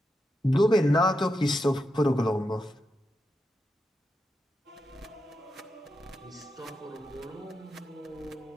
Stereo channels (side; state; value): both; normal; correlation 0.87